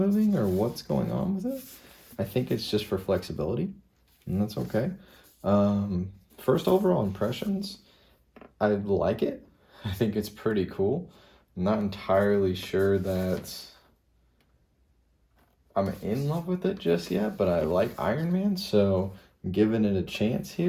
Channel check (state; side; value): identical; both; correlation 1.00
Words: or what's going on with it. I think it's just for flexibility, and that's okay. First overall impressions, I like it. I think it's pretty cool. I'm not entirely sure that I'm in love with it just yet, but I like Iron Man, so I'm giving it a chance